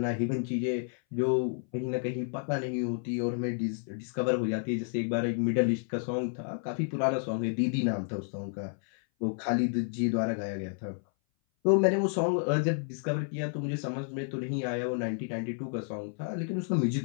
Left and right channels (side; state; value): right; silent; 57 dB below the other